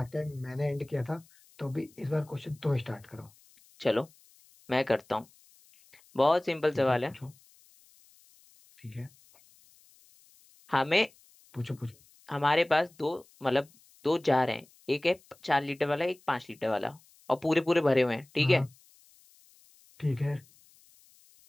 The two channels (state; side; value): noise; left; hiss, 29 dB below the sound